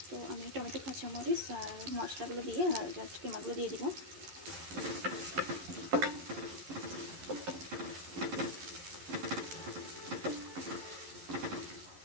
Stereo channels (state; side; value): late; left; 11 ms